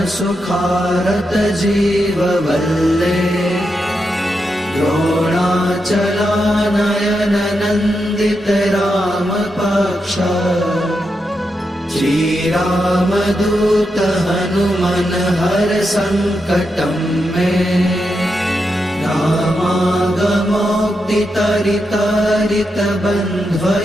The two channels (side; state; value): both; normal; correlation 0.85